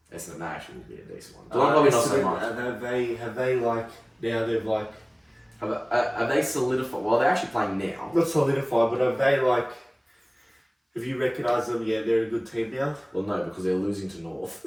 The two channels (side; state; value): both; identical; correlation 1.00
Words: Essendon, that actually will be a decent one. Geelong probably not so much. Have they like, now they've like... Have they solidified? Well, they're actually playing now. Not solidified, but have they like... Have you recognised them? Yeah, they're a good team now. Well, no, because they're losing to North.